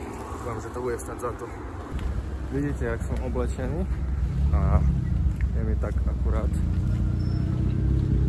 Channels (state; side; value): identical; both; correlation 1.00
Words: Dúfam, že to bude stať za to. Vidíte, jak som oblečený a je mi tak akurát.